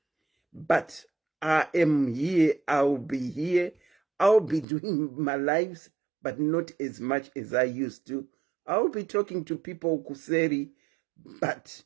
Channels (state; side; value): drops out; left; at 4.7 s